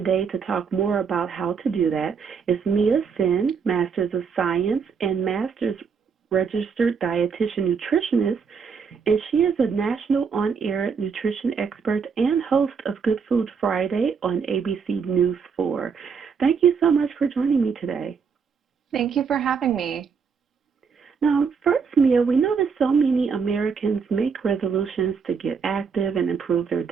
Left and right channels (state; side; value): quieter; left; 6.0 dB